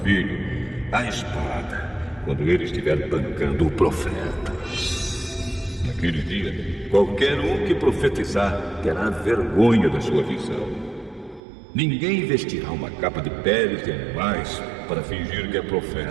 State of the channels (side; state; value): left; drops out; at 11.4 s